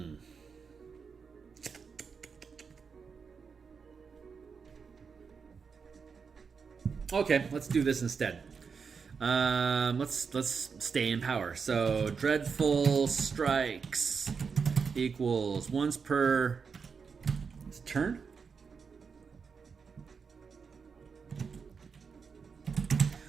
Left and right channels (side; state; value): left; quieter; 5.7 dB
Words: Okay, let's do this instead. Let's stay in power. So Dreadful Strikes equals once per turn.